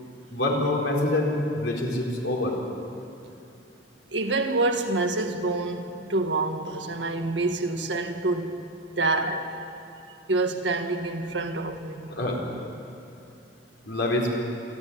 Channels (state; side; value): normal; both; correlation 0.17